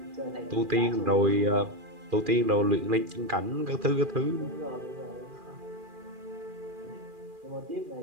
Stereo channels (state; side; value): late; left; 2.4 ms